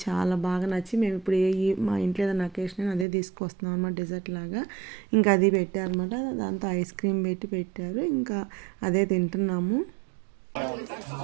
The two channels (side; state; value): left; drops out; at 3.1 s